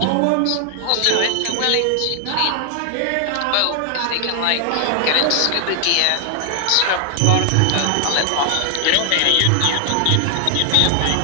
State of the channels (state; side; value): different; both; correlation 0.00